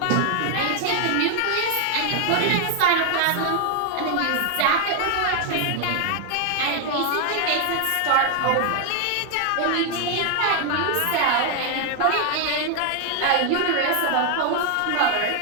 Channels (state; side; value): different; both; correlation 0.00